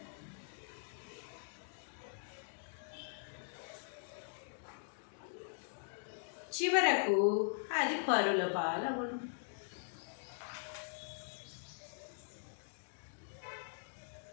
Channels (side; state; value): right; silent; digital silence